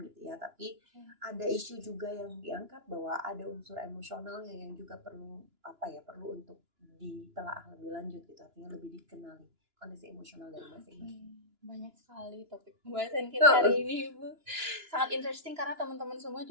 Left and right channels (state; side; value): late; left; 2.9 ms